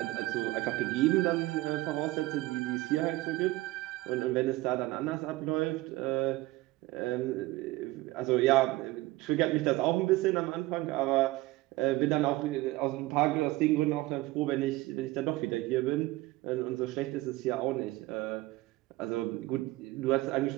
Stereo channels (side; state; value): left; quieter; 18.8 dB